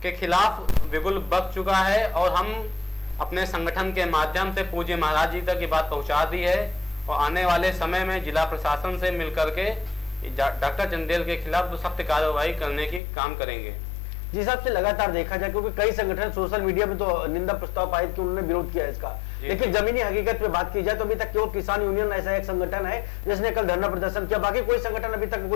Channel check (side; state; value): right; drops out; at 13.0 s